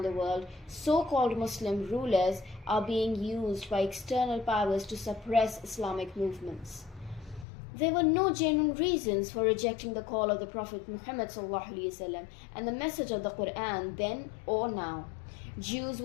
the world, so-called Muslim rulers are being used by external powers to suppress Islamic movements. There were no genuine reasons for rejecting the call of the Prophet Muhammad ﷺ and the message of the Qur'an then or now. Jews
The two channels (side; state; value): right; drops out; at 7.5 s